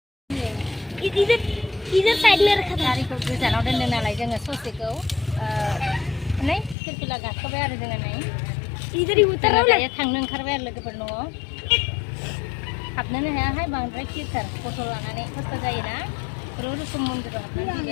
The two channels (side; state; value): right; drops out; at 6.8 s